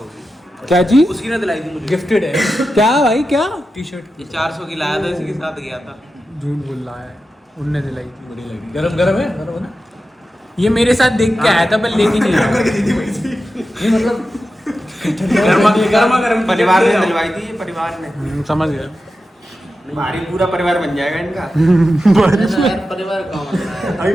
क्या चीज? उसकी ने दिलाई थी मुझे। गिफ्टेड है क्या भाई, क्या टी शर्ट ये 400 की लाया था, इसी के साथ गया था। झूठ बोल रहा है, उनने दिलाई थी। बड़ी लगी। गरम गरम है ना? ये मेरे साथ देख के आया था पर लेके नहीं आया। ये मतलब गर्मा गर्म परिवार ने दिलवाई थी, ये परिवार ने। समझ गया। भारी पूरा परिवार बन जाएगा इनका। परिवार कहाँ बन रहा है? अभी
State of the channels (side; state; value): both; normal; correlation 0.91